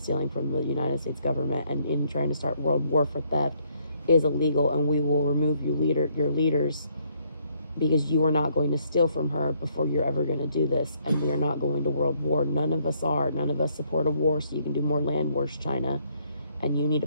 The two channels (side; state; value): both; inverted; correlation -0.70